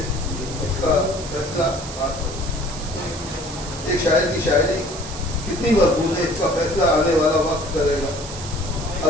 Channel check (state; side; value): noise; right; hiss, 11 dB below the sound